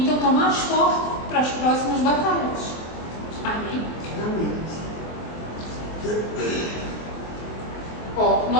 então tomar as forças para as próximas batalhas. Amém? Amém.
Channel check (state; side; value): late; right; 24 ms